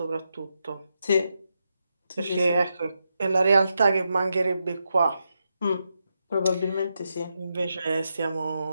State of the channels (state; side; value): inverted; both; correlation -0.85